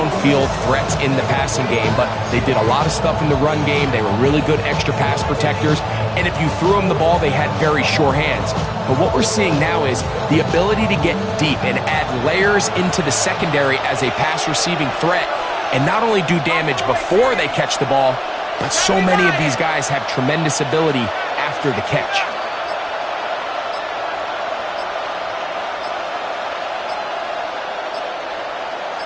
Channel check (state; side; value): identical; both; correlation 1.00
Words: threats in the passing game, but they did a lot of stuff in the run game. They were really good extra pass protectors, and if you threw them the ball, they had very sure hands. But what we're seeing now is the ability to get deep and add layers into the secondary as a pass-receiving threat, and not only do damage before they catch the ball, but so many of these guys have tremendous ability after the catch.